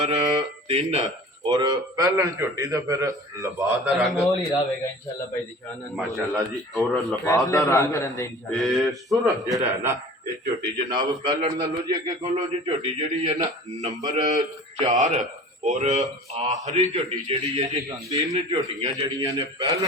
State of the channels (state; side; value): normal; both; correlation 0.42